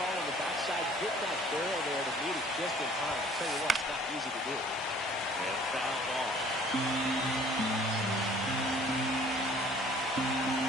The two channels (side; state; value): both; normal; correlation 0.54